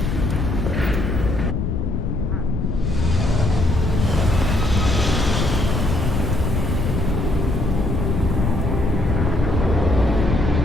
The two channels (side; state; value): left; noise; rumble, 1 dB below the sound